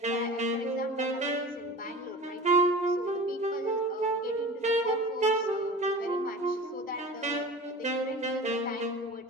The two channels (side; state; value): both; normal; correlation 0.36